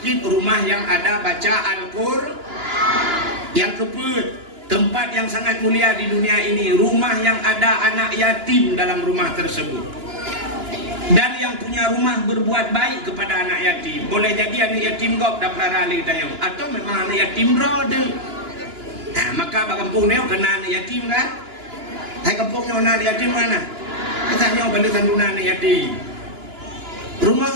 rumah yang ada baca Al-Qur'an. Yang kedua, tempat yang sangat mulia di dunia ini, rumah yang ada anak yatim dalam rumah tersebut. Dan yang punya rumah berbuat baik kepada anak yatim. Boleh jadi anak yatim kau tak pernah rali tayang, atau memang anak yatim brother. Nah, maka bak kampung neo kena anak yatim kan? Hai kampungnya anak yatim mana? Katanya balik sanduna anak yatim. Rumah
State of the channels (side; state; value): left; late; 2.9 ms